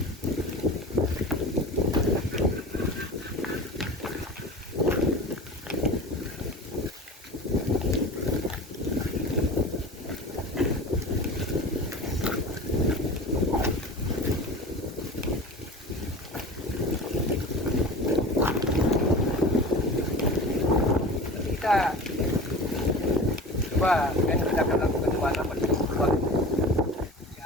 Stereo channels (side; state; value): both; normal; correlation 0.35